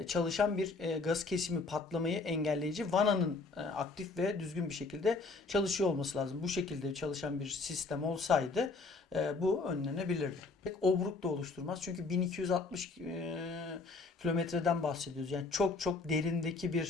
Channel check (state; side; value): quieter; right; 3.8 dB